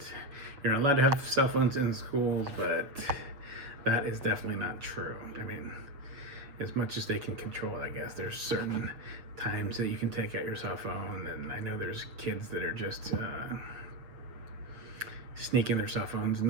you're not allowed to have cell phones in schools, but that is definitely not true. I mean, as much as they can control it, I guess. There's certain times that you can take out your cell phone, and I know there's kids that are just sneaking their cell phones and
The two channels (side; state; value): left; late; 7.4 ms